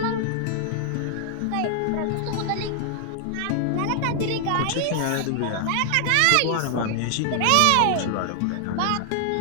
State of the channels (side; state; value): both; different; correlation 0.00